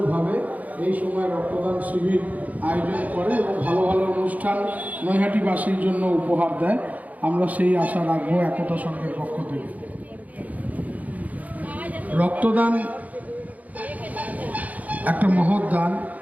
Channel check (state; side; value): late; left; 0.075 ms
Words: এই সময় রক্তদান শিবির আয়োজন করে এবং ভালো ভালো অনুষ্ঠান নৈহাটিবাসীর জন্য উপহার দেয়, আমরা সেই আশা রাখবো একতা সংঘের পক্ষ থেকে। রক্তদান একটা মহৎ দান,